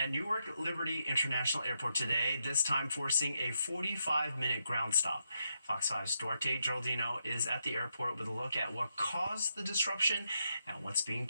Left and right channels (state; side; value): inverted; both; correlation -0.82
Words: Newark Liberty International Airport today, this time forcing a 45-minute ground stop. Fox 5's Duarte Geraldino is at the airport with a look at what caused the disruption and what's being